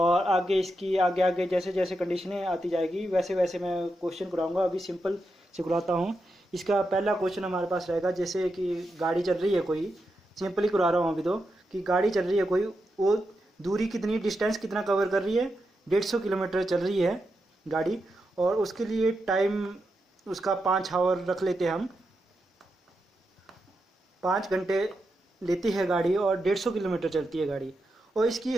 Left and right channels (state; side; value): normal; both; correlation 0.86